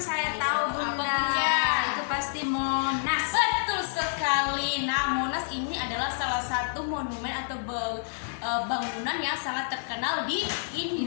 tahu Apa, Bunda. Bunda? Itu pasti Monas. Betul sekali. Nah, Monas ini adalah salah satu monumen atau bangunan yang sangat terkenal di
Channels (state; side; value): silent; right; digital silence